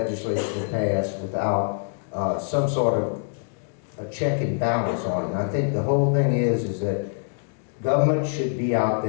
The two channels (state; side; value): silent; right; digital silence